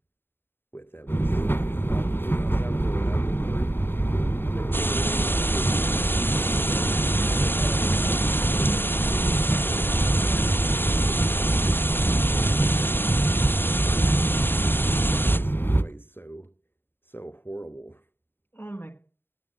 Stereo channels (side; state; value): right; late; 0.10 ms